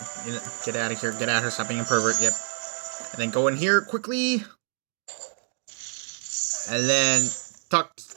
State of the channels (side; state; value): left; silent; digital silence